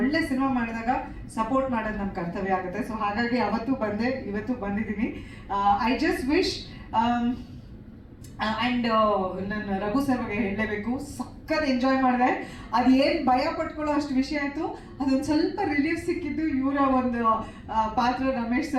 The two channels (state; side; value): identical; both; correlation 1.00